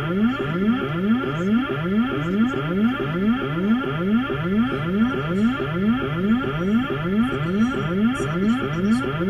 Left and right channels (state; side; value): identical; both; correlation 1.00